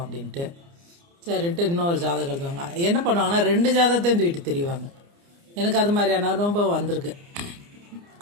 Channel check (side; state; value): left; late; 29 ms